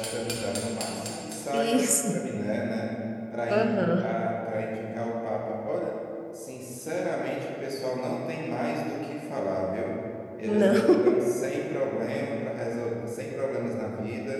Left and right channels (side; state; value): both; identical; correlation 1.00